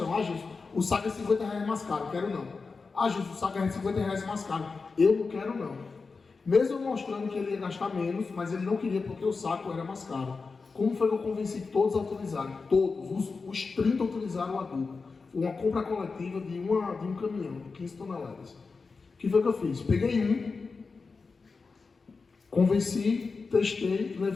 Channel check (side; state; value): right; quieter; 4.5 dB